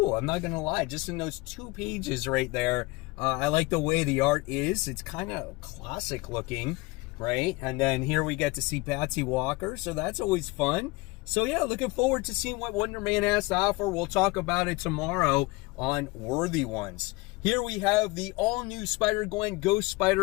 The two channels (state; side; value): quieter; right; 23.5 dB